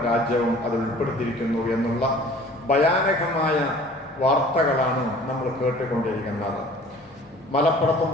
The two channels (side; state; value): both; normal; correlation 0.48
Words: രാജ്യവും അത് ഉൾപ്പെടുത്തിയിരിക്കുന്നു എന്നുള്ള ഭയാനകമായ വാർത്തകളാണ് നമ്മൾ കേട്ടുകൊണ്ടിരിക്കുന്നത്. മലപ്പുറത്തും